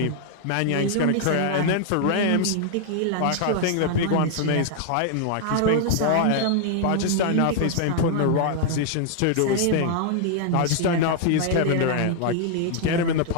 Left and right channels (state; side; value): different; both; correlation 0.00